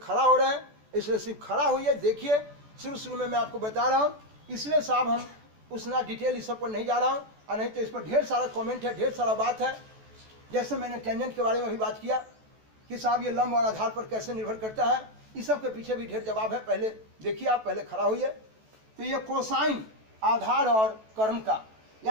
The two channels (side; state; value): left; late; 14 ms